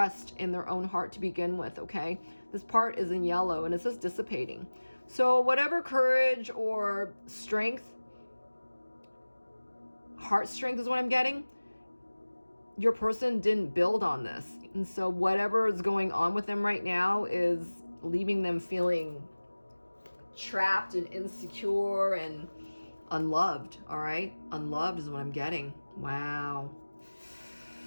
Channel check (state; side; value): inverted; both; correlation -1.00